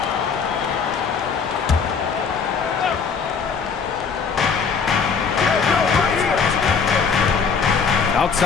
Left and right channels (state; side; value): quieter; right; 5.8 dB